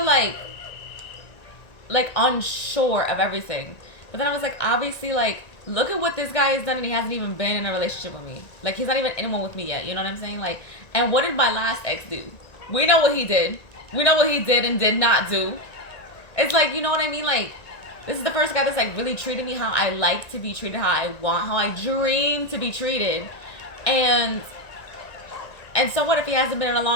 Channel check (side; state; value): right; late; 1.9 ms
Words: like unsure of everything. But then I was like, obviously, like, look at what this guy has done, and he hasn't even been in a relationship with me. Like, he's not even in one with me yet. You know what I'm saying? Like, and what did my last ex do? We know what he did. We know what he did and did not do. It's like, you know what I mean? Like, this is the first guy that's like really treated me how I like to be treated, how I want, how I dream to be treated. And so what if he hasn't been in a